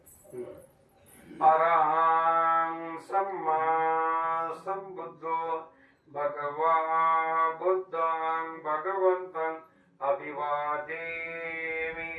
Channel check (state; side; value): identical; both; correlation 1.00